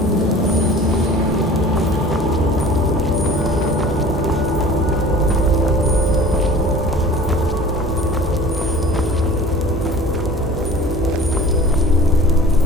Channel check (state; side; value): normal; both; correlation 0.43